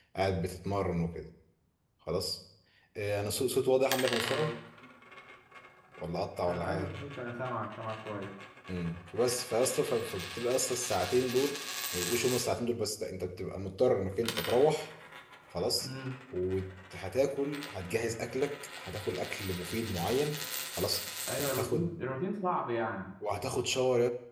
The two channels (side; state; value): both; identical; correlation 1.00